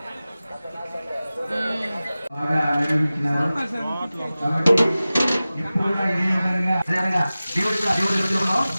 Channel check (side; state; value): both; inverted; correlation -0.97